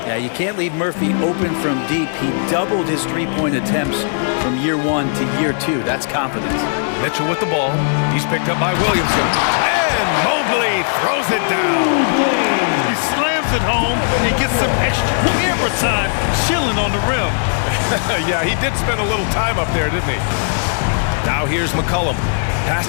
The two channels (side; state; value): right; silent; digital silence